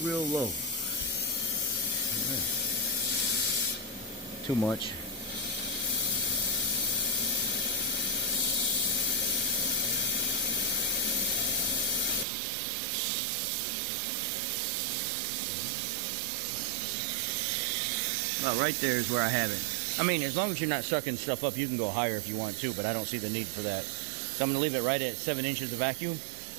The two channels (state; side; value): drops out; left; at 12.2 s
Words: Too much. Well, right there is where I have it. I mean, as long as you're not sucking stuff up, you can go higher if you want to, but I don't see the need for that. So I'm going to leave it right at 7 inches of vacuum,